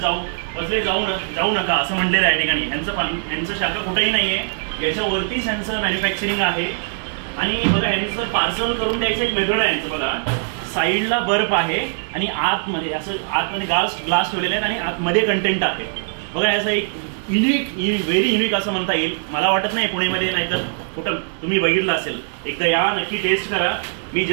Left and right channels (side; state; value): left; silent; digital silence